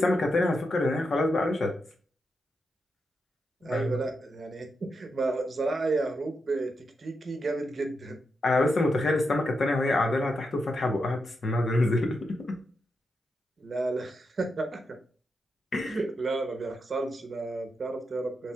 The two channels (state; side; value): normal; both; correlation 0.85